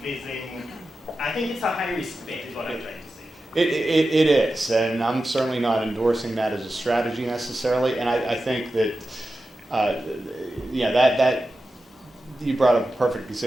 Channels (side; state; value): both; normal; correlation 0.92